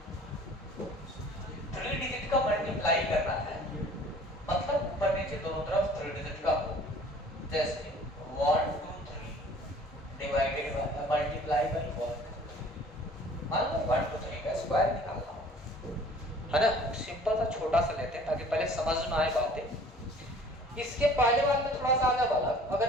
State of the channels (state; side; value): normal; both; correlation 0.50